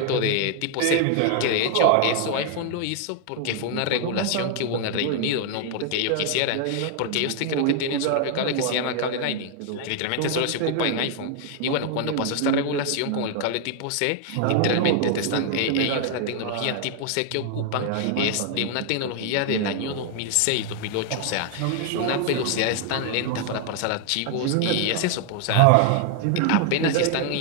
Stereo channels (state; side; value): different; both; correlation 0.00